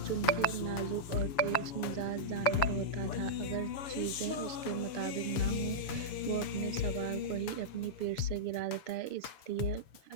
नाजुक और तेज मिजाज जानवर होता था, अगर चीज़ें उसके मुताबिक ना हो, वो अपने सवार को ही अपनी पीठ से गिरा देता है। इसलिए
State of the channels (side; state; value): right; late; 6.9 ms